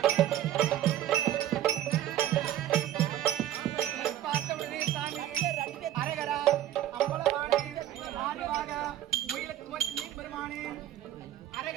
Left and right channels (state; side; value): quieter; left; 12.3 dB